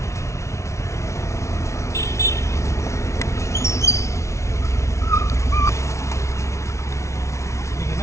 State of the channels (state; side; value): late; right; 0.14 ms